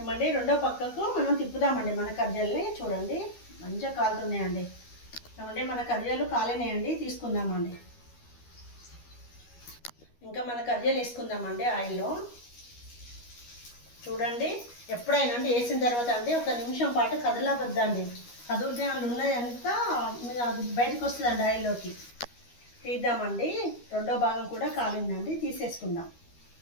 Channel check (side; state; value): right; late; 12 ms